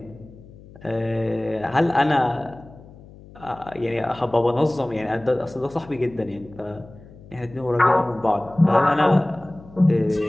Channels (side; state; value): left; noise; hum, 21 dB below the sound